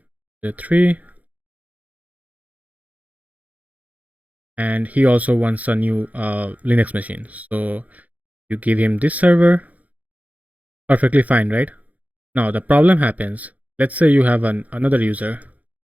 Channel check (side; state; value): left; late; 0.075 ms